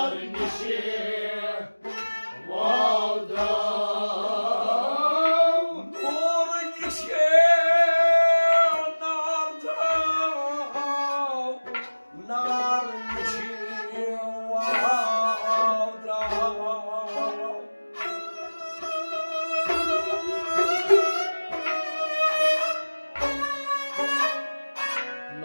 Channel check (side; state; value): both; inverted; correlation -1.00